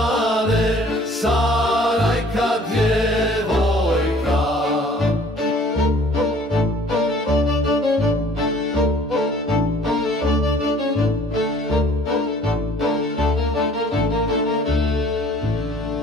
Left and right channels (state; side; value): normal; both; correlation 0.53